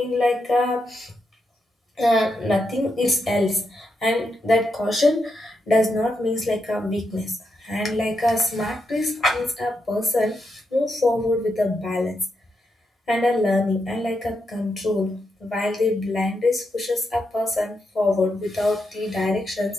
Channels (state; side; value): normal; both; correlation 0.84